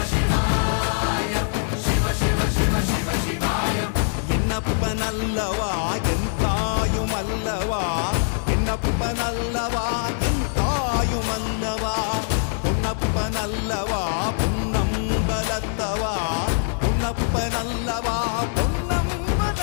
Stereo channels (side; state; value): right; silent; digital silence